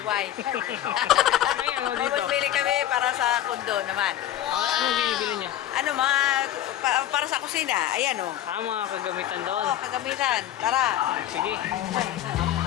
May ano dito? Mamimili kami para sa kundo naman. Anong binibili niyo? Ano, mga para sa kusina. Ayan o. Mga kagamitan doon. Oh, kagamitan. Tara. Sige.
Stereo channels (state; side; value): quieter; right; 12.3 dB